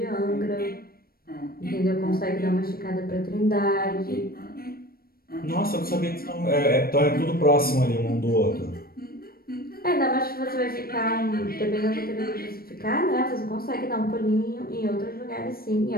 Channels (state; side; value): late; right; 0.44 ms